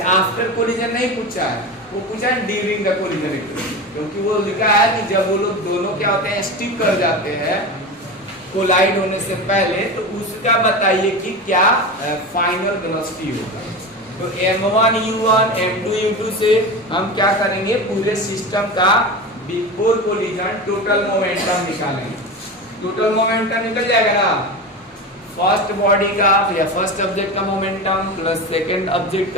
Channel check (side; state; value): both; normal; correlation 0.25